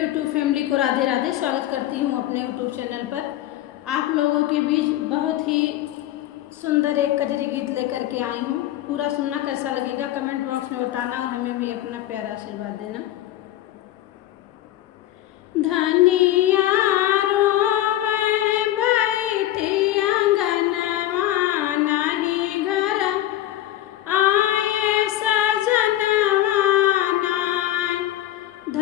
family को राधे राधे। स्वागत करती हूँ अपने यूट्यूब चैनल पर। आप लोगों के बीच बहुत ही सुंदर एक कजरी गीत लेकर के आई हूँ। पूरा सुनना, कैसा लगेगा कमेंट बॉक्स में बताना और हमें भी अपना प्यारा आशीर्वाद देना। धनिया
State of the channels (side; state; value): right; quieter; 13.7 dB